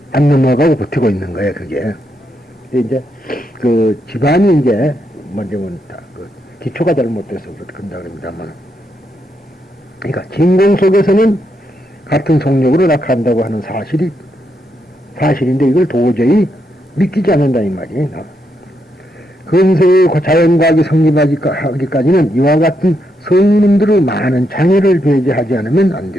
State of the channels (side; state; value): both; normal; correlation 0.80